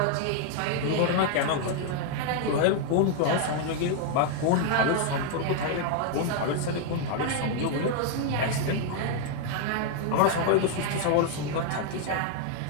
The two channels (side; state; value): both; different; correlation 0.00